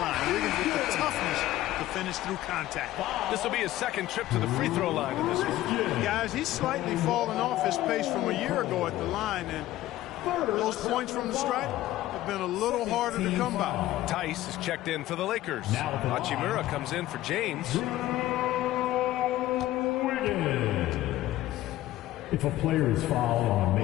Wiggins with the toughness to finish through contact. This will be his second trip to the free throw line in this one. Guys, he's slightly fallen off his pace from a year ago at the line, and those points from the stripe have been a little harder to come by. Tice is checked in for the Lakers. Hachimura comes in for James. If a player is fouled on a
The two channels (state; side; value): quieter; right; 15.2 dB